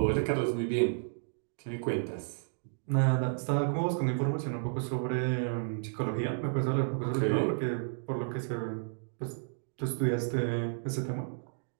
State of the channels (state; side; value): silent; left; digital silence